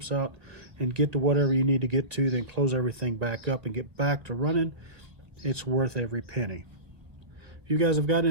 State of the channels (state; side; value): late; left; 1.1 ms